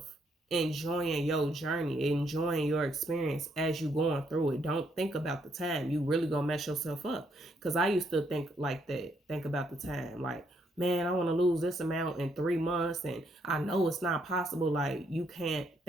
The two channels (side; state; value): both; normal; correlation 0.73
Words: enjoying your journey, enjoying your experience as you going through it. Don't think about the time. You really gonna mess yourself up. Because I used to think like that. Think about the time. Like, man, I want to lose this amount in 3 months, and I know it's not possible. Like, you can't